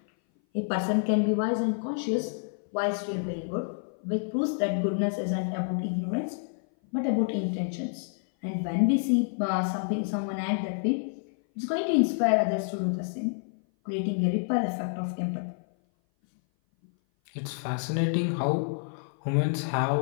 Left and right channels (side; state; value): right; silent; 57 dB below the other